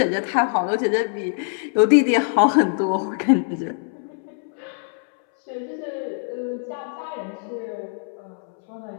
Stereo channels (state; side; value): silent; right; 63 dB below the other